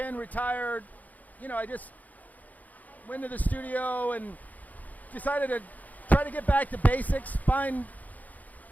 retired, I just went to the studio and decided to try to get back to basics, find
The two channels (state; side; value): late; right; 0.079 ms